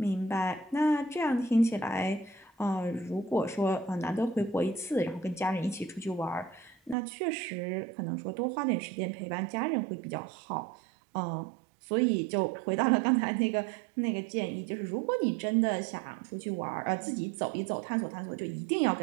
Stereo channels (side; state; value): left; drops out; at 7.0 s